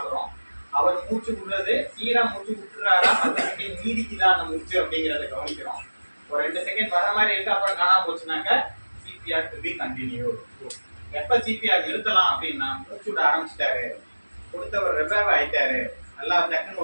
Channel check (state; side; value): inverted; both; correlation -1.00